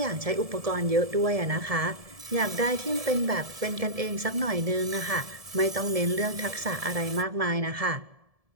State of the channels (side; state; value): left; late; 1.7 ms